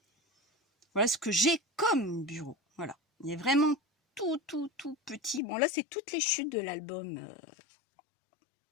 Voilà ce que j'ai comme bureau. Voilà, il est vraiment tout petit. Bon là, c'est toutes les chutes de l'album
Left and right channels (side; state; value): right; drops out; at 5.4 s